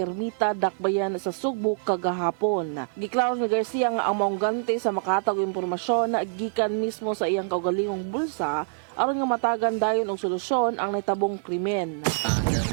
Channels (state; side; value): silent; left; digital silence